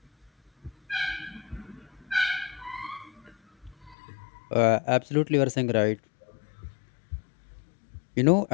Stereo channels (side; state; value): right; drops out; at 4.0 s